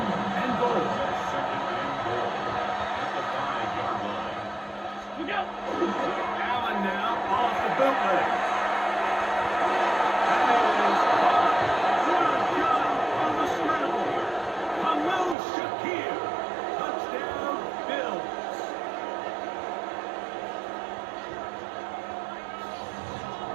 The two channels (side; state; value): left; drops out; at 15.4 s